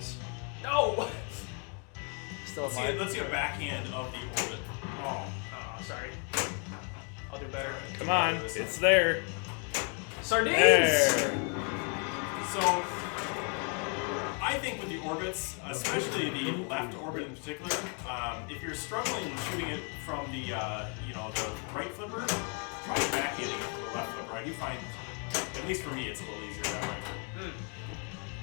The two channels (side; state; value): right; quieter; 38.6 dB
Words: No! Still Let's see a backhand of the orbit. Oh, sorry. I'll do better. Come on, it's there. Sardines! There. So, I think with the orbits, especially the left orbit in particular, if you're struggling shooting it from the the right flipper, try back hitting it from the left flipper. I do find, at least for me, it's a little easier that way.